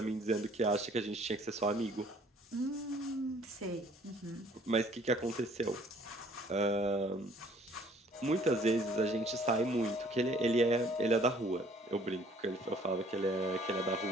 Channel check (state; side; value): normal; both; correlation 0.58